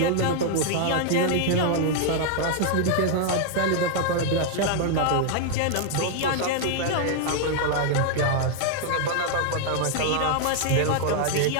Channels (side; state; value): both; different; correlation 0.00